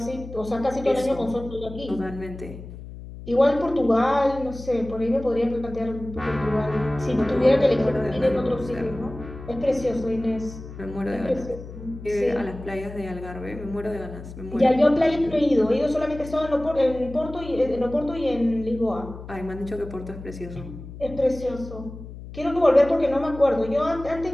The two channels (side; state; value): left; noise; hum, 13 dB below the sound